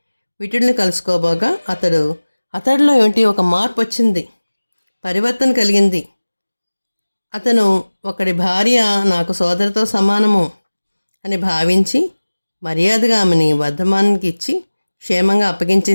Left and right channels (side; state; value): both; inverted; correlation -1.00